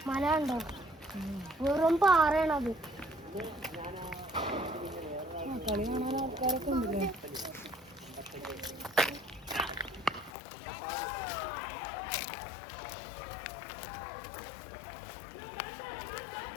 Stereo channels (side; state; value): right; drops out; at 10.3 s